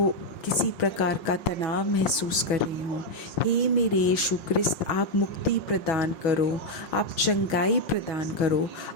किसी प्रकार का तनाव महसूस कर रहे हों, हे मेरे यीशु ख्रिस्त, आप मुक्ति प्रदान करो, आप चंगाई प्रदान करो।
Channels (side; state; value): right; late; 6.2 ms